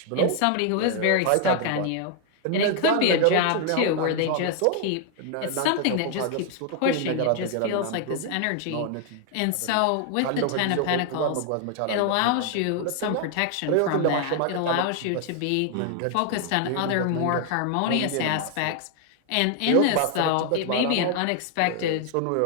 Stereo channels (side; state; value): both; different; correlation 0.00